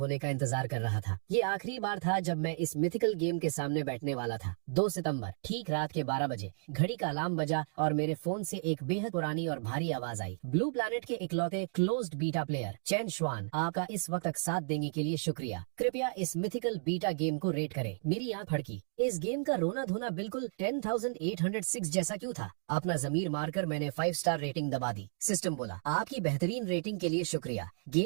का इंतजार कर रहा था। ये आखिरी बार था जब मैं इस मिथिकल गेम के सामने बैठने वाला था। 2 सितंबर ठीक रात के 12 बजे घड़ी का अलार्म बजा और मेरे फोन से एक बेहद पुरानी और भारी आवाज आई। ब्लू प्लैनेट के इकलौते क्लोज्ड बीटा प्लेयर चेन श्वान, आपका इस वक्त तक साथ देने के लिए शुक्रिया। कृपया इस मिथिकल बीटा गेम को रेट करें। मेरी आंख फड़की। इस गेम का उनका रोना धोना बिल्कुल 10,806 जैसा क्यों था? अपना जमीर मारकर मैंने 5 स्टार रेटिंग दबा दी। सिस्टम बोला, आपकी बेहतरीन रेटिंग के लिए शुक्रिया।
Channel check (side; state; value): left; silent; digital silence